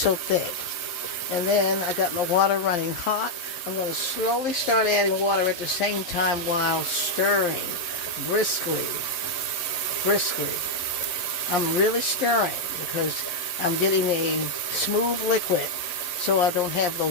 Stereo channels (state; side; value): late; right; 11 ms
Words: thick. And then I got my water running hot. I'm going to slowly start adding water at the same time while stirring briskly. I'm really stirring because I'm getting a smooth liquid so I don't have